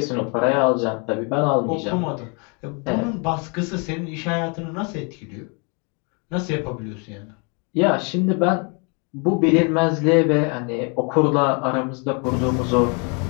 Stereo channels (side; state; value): right; quieter; 34.3 dB